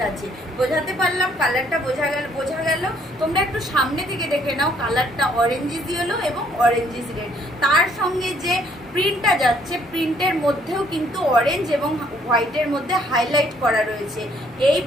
আছে। বোঝাতে পারলাম? কালারটা বোঝা গেল? তোমরা একটু সামনে থেকে দেখে নাও, কালারটা অরেঞ্জিস ইয়েলো এবং অরেঞ্জিস রেড। তার সঙ্গে যে প্রিন্টটা যাচ্ছে, প্রিন্টের মধ্যেও কিন্তু অরেঞ্জ এবং হোয়াইটের মধ্যে হাইলাইট করা রয়েছে। এই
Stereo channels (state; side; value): normal; both; correlation 0.65